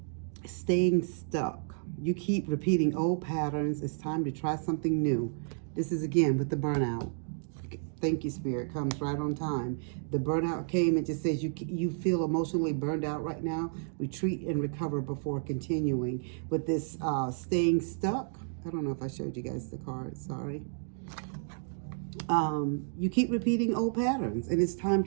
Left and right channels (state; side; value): silent; left; digital silence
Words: Staying stuck. You keep repeating old patterns. It's time to try something new. This is again with the burnout. Thank you, Spirit. Comes right on time. The burnout came and just says you feel emotionally burned out right now. Retreat and recover before continuing. With this staying stuck, I don't know if I showed you guys the card. Sorry. You keep repeating old patterns, and it's time